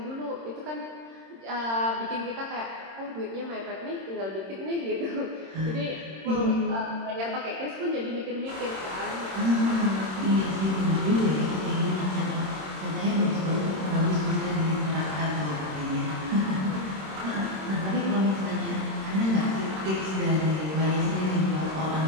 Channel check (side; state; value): left; late; 26 ms